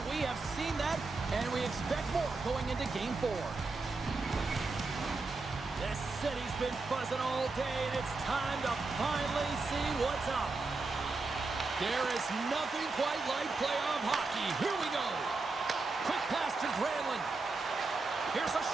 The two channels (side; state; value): left; quieter; 3.7 dB